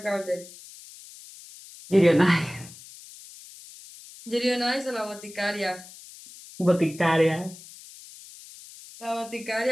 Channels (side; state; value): left; noise; hiss, 18 dB below the sound